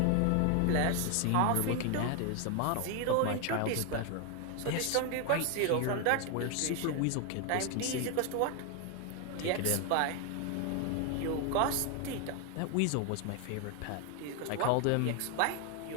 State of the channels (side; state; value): both; different; correlation 0.01